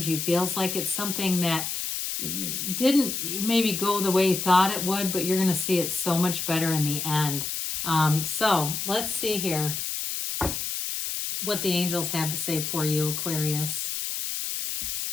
feels like. It's something that didn't maybe go the way you thought it would, but you're going to see it so much better in the end. So let's see here what the angels have to say for you, Aquarius.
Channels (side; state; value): left; noise; hiss, 3 dB below the sound